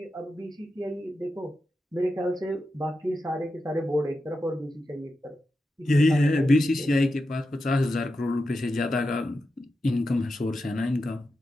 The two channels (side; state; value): both; normal; correlation 0.89